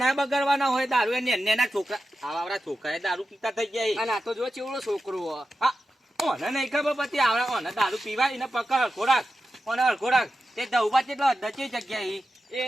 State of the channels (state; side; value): normal; both; correlation 0.91